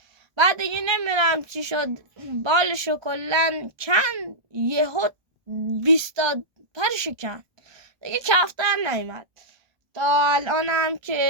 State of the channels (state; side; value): late; left; 1.2 ms